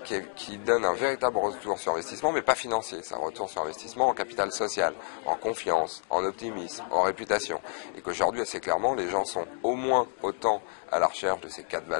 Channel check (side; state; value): right; silent; 59 dB below the other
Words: qui donne un véritable retour sur investissement, mais pas financier. C'est un retour sur investissement en capital social, en confiance, en optimisme, en réputation. Et qu'aujourd'hui, assez clairement, les gens sont au moins autant à la recherche de ces 4